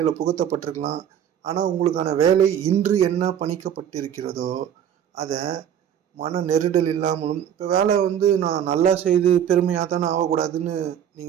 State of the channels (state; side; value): quieter; left; 9.5 dB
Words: புகுத்தப்பட்டிருக்கலாம். ஆனால் உங்களுக்கான வேலை இன்று என்ன பணிக்கப்பட்டிருக்கிறதோ அதை மன நெருடல் இல்லாமலும், இப்போ வேலை நான் நல்லா செய்து பெருமையாக தானே ஆகக்கூடாதுன்னு